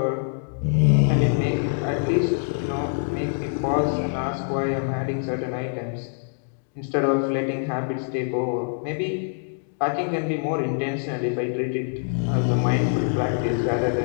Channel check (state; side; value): silent; right; digital silence